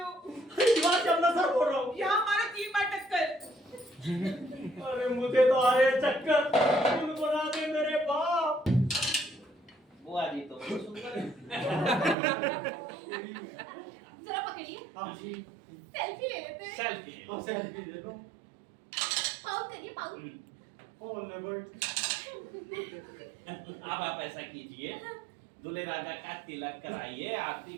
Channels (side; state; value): left; drops out; at 12.2 s